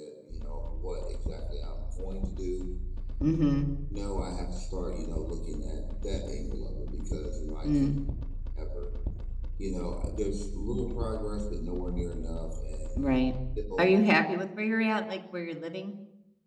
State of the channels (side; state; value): both; identical; correlation 1.00